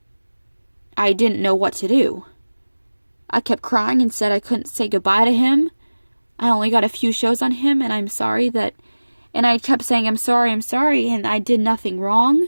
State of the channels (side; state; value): both; inverted; correlation -1.00